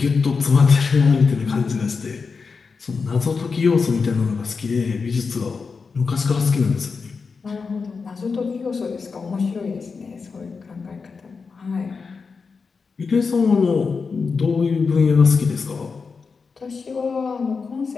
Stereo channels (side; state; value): right; quieter; 5.0 dB